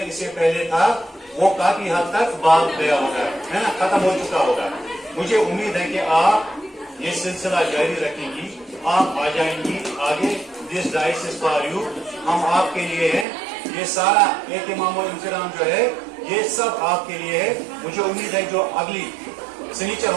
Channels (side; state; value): left; drops out; at 13.2 s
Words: اس سے پہلے تھا वो काफी हद तक भाग गया होगा, है ना, खत्म हो चुका होगा। मुझे उम्मीद है कि आप ये सिलसिला जारी रखेंगी, आप आ जाएंगी आगे। This dice is for you, हम आपके लिए हैं। ये सारा एहतिमाम और इंतजाम जो है ये सब आपके लिए है। मुझे उम्मीद है जो अगली सनीचर